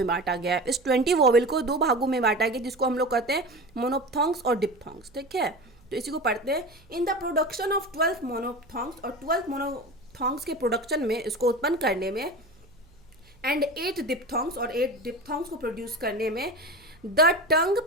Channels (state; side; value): noise; right; hum, 28 dB below the sound